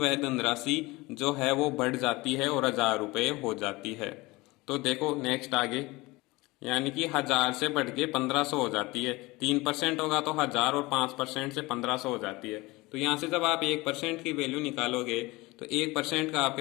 धनराशि जो है वो बढ़ जाती है और 1000 रुपये हो जाती है। तो देखो नेक्स्ट आगे, यानी कि 1000 से बढ़ के 1500 हो जाती है। 3% होगा तो 1000 और 5% से 1500 हो जाती है। तो यहाँ से जब आप 1% की वैल्यू निकालोगे तो 1% का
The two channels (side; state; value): right; quieter; 22.1 dB